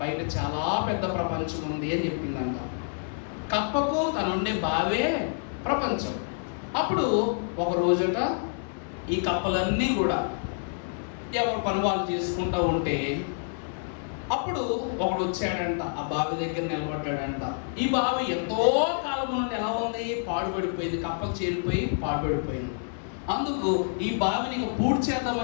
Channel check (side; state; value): right; silent; 59 dB below the other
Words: బయట చాలా పెద్ద ప్రపంచం ఉంది అని చెప్పిందంట. కప్పకు తనుండే బావే ప్రపంచం. అప్పుడు ఒక రోజట ఈ కప్పలన్నీ కూడా ఎవరు పని వాళ్ళు చేసుకుంటూ ఉంటే అప్పుడు ఒకడు వచ్చాడంట, ఆ బావి దగ్గర నిలబడ్డాడంట. ఈ బావి ఎంతో కాలం నుండి ఎలా ఉంది, పాడుపడిపోయింది, కప్పలు చేరిపోయి పాడుపడిపోయింది. అందుకు ఈ బావిని పూర్తి